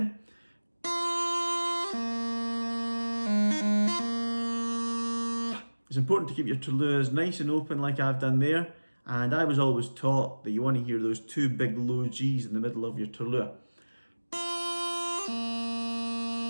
It's important to keep your turluas nice and open like I've done there, and I was always taught that you want to hear those two big low G's in the middle of your turlua.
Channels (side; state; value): both; inverted; correlation -1.00